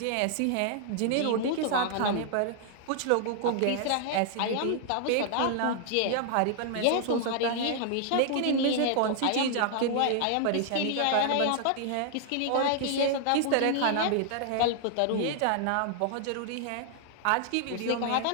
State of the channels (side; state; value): both; different; correlation 0.00